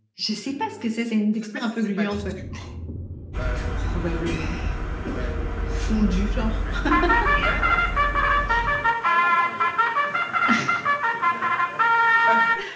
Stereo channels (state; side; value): identical; both; correlation 1.00